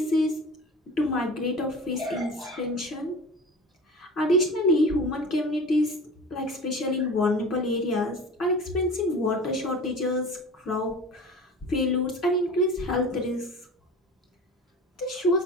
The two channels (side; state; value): both; normal; correlation 0.36